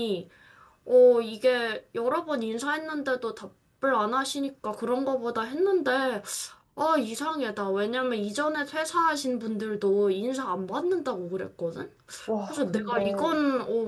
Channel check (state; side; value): identical; both; correlation 1.00